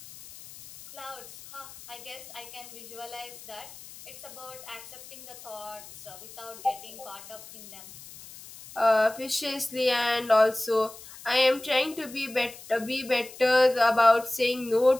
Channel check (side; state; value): left; noise; hiss, 17 dB below the sound